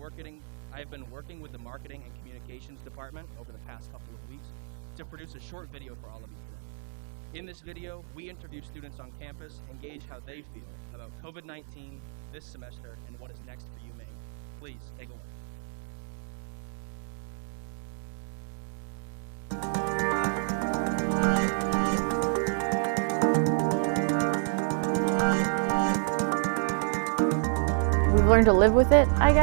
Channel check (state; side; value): silent; left; 58 dB below the other